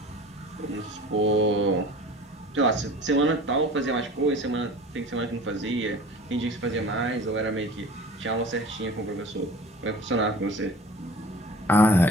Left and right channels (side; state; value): both; normal; correlation 0.42